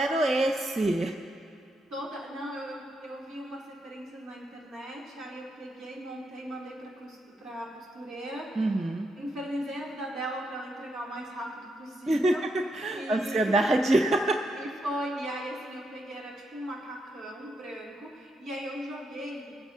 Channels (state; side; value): normal; both; correlation 0.81